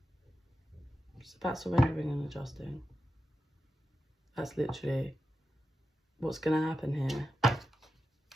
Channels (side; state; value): both; normal; correlation 0.89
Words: It's about surrendering and adjusting. That's literally what's going to happen here.